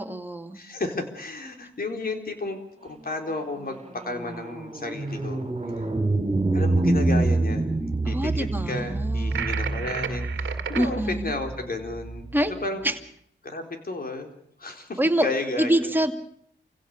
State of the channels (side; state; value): both; normal; correlation 0.75